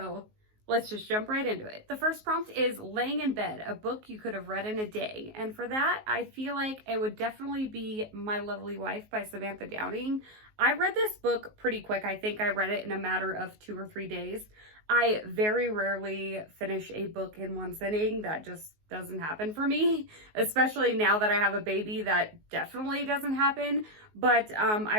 let's just jump right into it. The first prompt is Laying in Bed, a book you could have read in a day. And for that, I feel like it would definitely be My Lovely Wife by Samantha Downing. I read this book pretty quick. I think I read it in a matter of 2 or 3 days. I very rarely finish a book in one sitting. That just doesn't happen for me, especially now that I have a baby. That definitely doesn't happen. But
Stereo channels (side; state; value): left; late; 19 ms